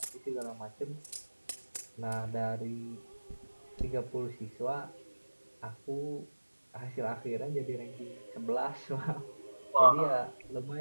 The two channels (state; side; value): inverted; both; correlation -1.00